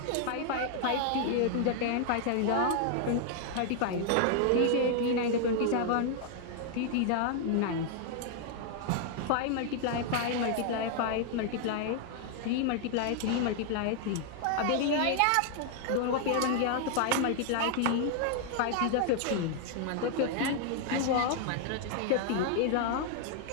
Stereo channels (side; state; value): both; different; correlation 0.00